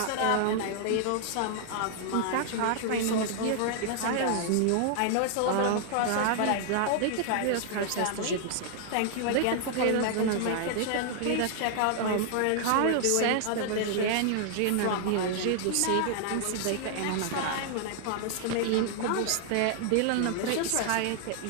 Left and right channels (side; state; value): both; different; correlation 0.00